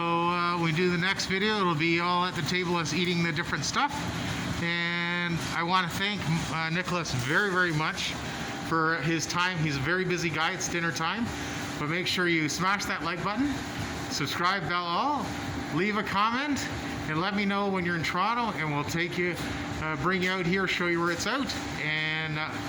when we do the next video, it'll be all at the table us eating the different stuff. And I want to thank Nicholas very, very much for his time. He's a very busy guy. It's dinner time. But make sure you smash that like button, subscribe, bell all, leave a comment, and let me know when you're in Toronto, and we'll take you, bring you out here, show you where it's out. And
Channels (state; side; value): identical; both; correlation 1.00